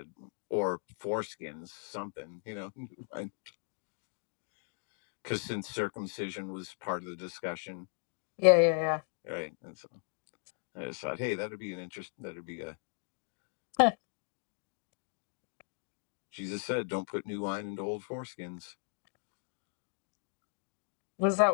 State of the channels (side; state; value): right; silent; 53 dB below the other